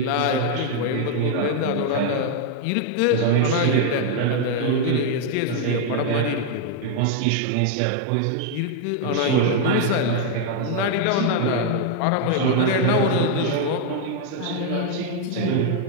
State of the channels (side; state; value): both; different; correlation 0.00